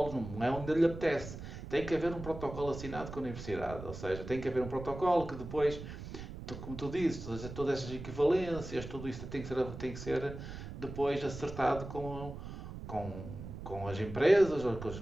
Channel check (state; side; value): noise; right; rumble, 10 dB below the sound